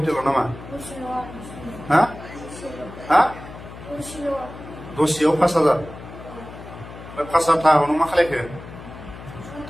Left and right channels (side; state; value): left; noise; hum, 14 dB below the sound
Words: नामा हा हा दसेयाव 5,000 ओमफ्राय 5,000 थाखाखौ नों मा खालायखो